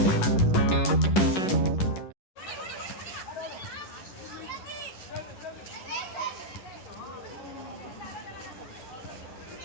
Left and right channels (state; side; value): late; right; 10 ms